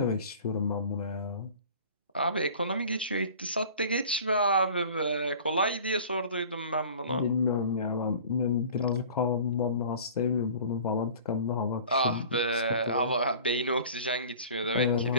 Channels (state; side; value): inverted; both; correlation -0.44